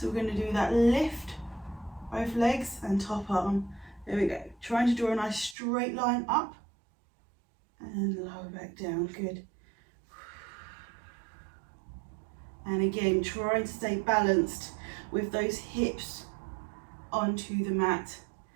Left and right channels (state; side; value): drops out; left; at 5.6 s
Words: we're going to do that lift, both legs and top arm. There we go. Trying to draw a nice straight line up and lower back down. Good. And again, trying to stay balanced with those hips onto the mat,